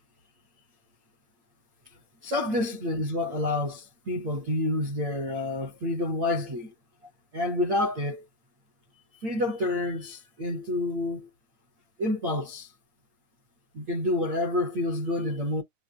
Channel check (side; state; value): left; late; 8.7 ms